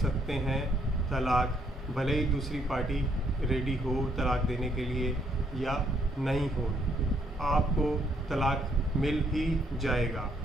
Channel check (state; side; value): normal; both; correlation 0.70